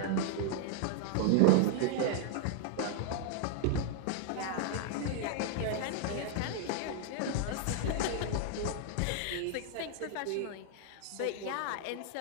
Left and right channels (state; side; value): different; both; correlation 0.00